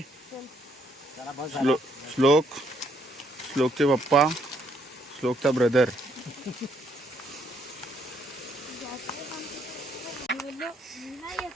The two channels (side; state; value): both; normal; correlation 0.70